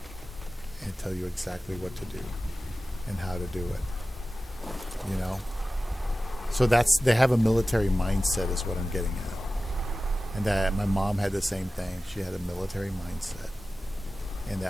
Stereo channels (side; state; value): both; normal; correlation 0.95